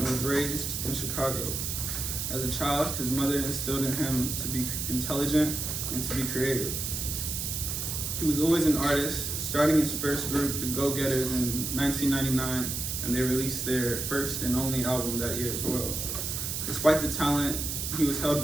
raised in Chicago. As a child, his mother instilled in him to be intelligent and to be creative. He was always an artist, starting his first group, the Go-Getters, in 1999, and they released their first and only album that year as well. Despite the talent, he was held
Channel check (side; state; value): right; noise; hiss, 3 dB below the sound